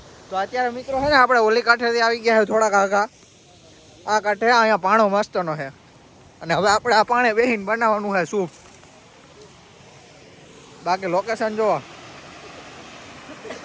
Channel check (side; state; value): both; identical; correlation 1.00